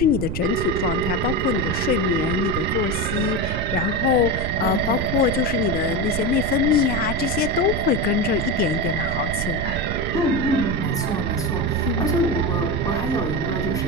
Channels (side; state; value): right; noise; rumble, 4 dB below the sound